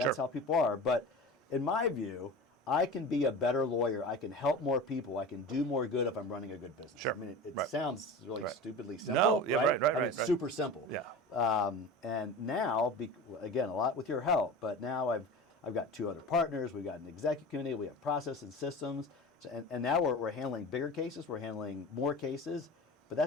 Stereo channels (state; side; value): normal; both; correlation 0.32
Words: how people are. But in my view, I can be a better lawyer. I can help more people. I can do more good if I'm running a good business. Sure. It sounds really stupidly simple, right? It's super simple. Yeah. And now, again, a lot with your help, but now I've got 2 other partners. We've got an executive committee. We have process and systems. And now we're handling bigger cases. We're handling more cases. But